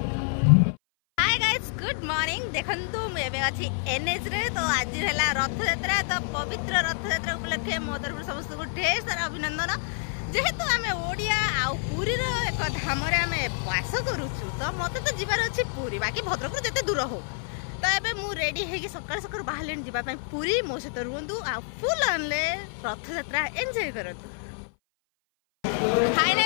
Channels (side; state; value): right; silent; 58 dB below the other